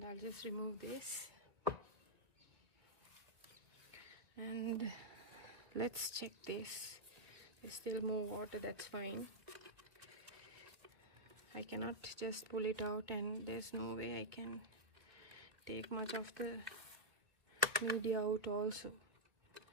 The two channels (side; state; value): left; late; 1.6 ms